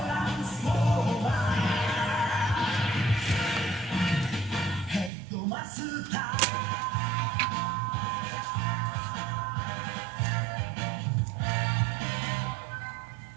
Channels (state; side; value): drops out; left; at 5.1 s